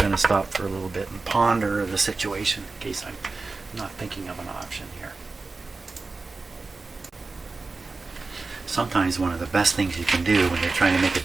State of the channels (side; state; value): left; quieter; 3.8 dB